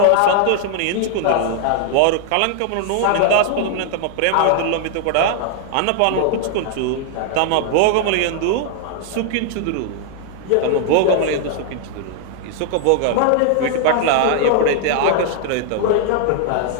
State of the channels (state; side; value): different; both; correlation 0.00